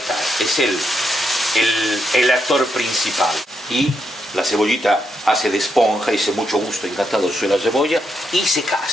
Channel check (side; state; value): both; normal; correlation 0.81